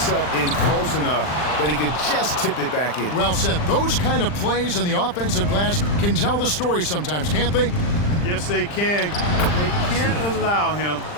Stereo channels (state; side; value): late; right; 40 ms